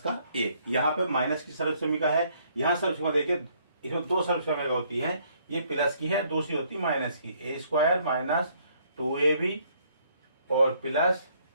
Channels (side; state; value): both; inverted; correlation -0.66